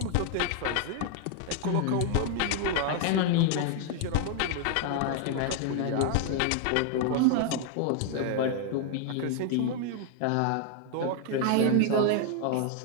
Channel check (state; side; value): different; both; correlation 0.00